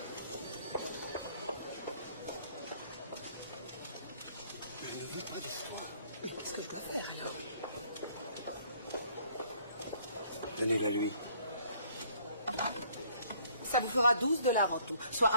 Je ne veux pas d'histoire. Qu'est-ce que je dois faire, alors? Donnez-la lui. Ça vous fera 12 $ en tout, soit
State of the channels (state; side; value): inverted; both; correlation -0.61